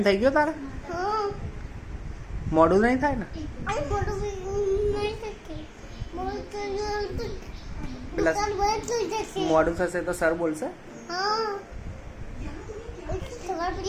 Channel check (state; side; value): identical; both; correlation 1.00